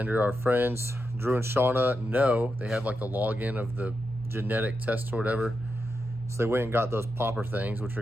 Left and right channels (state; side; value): normal; both; correlation 0.87